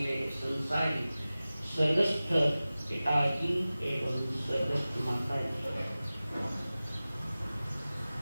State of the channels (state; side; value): inverted; both; correlation -0.97